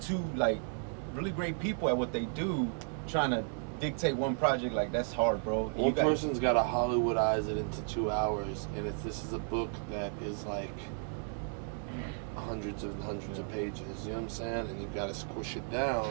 like really great people at what they do, trying to dictate one project. Like that's hard, bro. One person's got to Hollywoodize it into 2 hours, and this is a book that is like hundreds and hundreds of pages. You know what I'm saying? And you've got to squish it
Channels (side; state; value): left; silent; 55 dB below the other